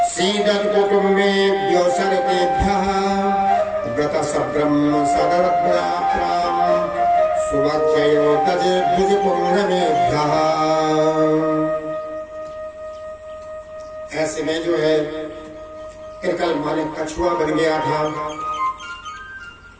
सीदन कुटुम्बेभ्यो सर्वेभ्यः व्रत सब्रह्म सदरत्नाप्राम सुभक्षयो तजे भुज पुण्यमेभ्यः। ऐसे में जो है कृकल माने कछुआ बन गया था।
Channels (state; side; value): identical; both; correlation 1.00